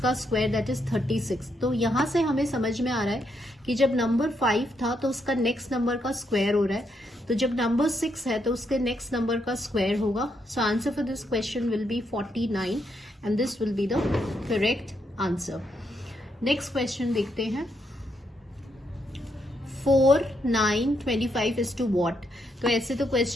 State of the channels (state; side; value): normal; both; correlation 0.78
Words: का स्क्वायर दैट इज 36। तो यहां से हमें समझ में आ रहा है कि जब नंबर 5 था तो उसका नेक्स्ट नंबर का स्क्वायर हो रहा है, तो जब नंबर 6 है तो उसके नेक्स्ट नंबर का स्क्वायर होगा। सो answer for this question will B 49 and this will be the correct answer. Next question देखते हैं। 4, 9, 25 is to what? तो ऐसे तो